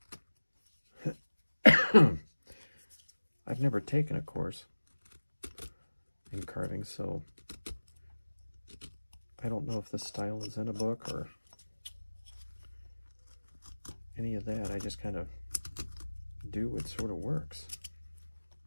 I've never taken a course in carving, so I don't know if this style is in a book or any of that. I just kind of do what sort of works.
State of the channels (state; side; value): inverted; both; correlation -1.00